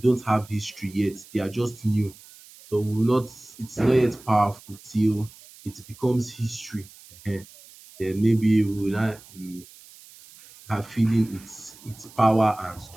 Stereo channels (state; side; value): noise; right; hiss, 22 dB below the sound